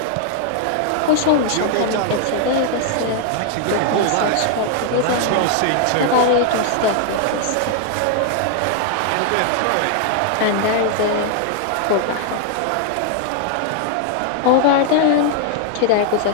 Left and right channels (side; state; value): both; different; correlation 0.00